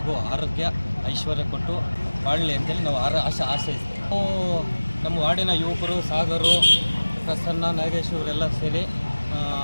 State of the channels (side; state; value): both; inverted; correlation -1.00